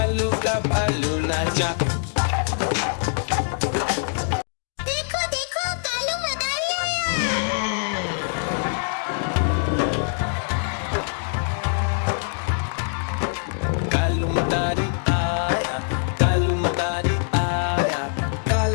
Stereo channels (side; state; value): right; silent; 62 dB below the other